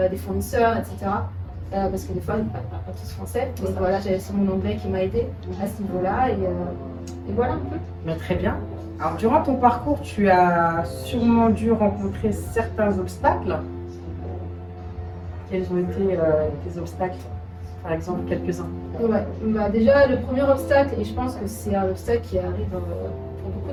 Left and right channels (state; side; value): identical; both; correlation 1.00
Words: fournisseurs, etc. Parce que des fois, ils ne parlent pas tous français. Donc voilà, j'avais aussi mon anglais qui m'a aidé à ce niveau-là. Et voilà un peu. Très bien. Alors, durant ton parcours, tu as sûrement dû rencontrer certains obstacles. Quels ont été tes obstacles? Par exemple, quelques-uns. Ouais. Déjà, le premier obstacle, et je pense que c'est un obstacle qui arrive pour beaucoup